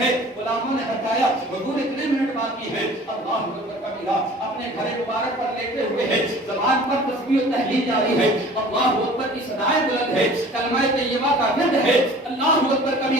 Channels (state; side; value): normal; both; correlation 0.46